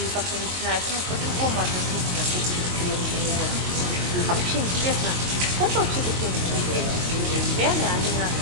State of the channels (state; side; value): late; left; 22 ms